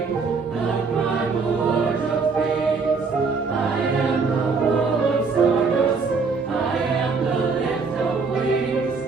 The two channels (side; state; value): left; quieter; 4.7 dB